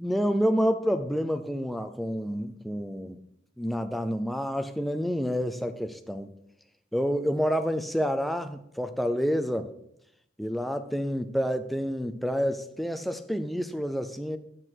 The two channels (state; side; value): normal; both; correlation 0.93